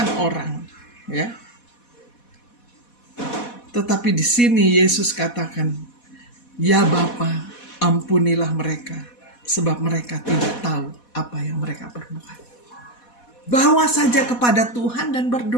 orang, ya. Tetapi di sini Yesus katakan, "Ya Bapa, ampunilah mereka, sebab mereka tidak tahu apa yang mereka perbuat." Bawa saja kepada Tuhan dan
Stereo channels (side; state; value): right; late; 4.1 ms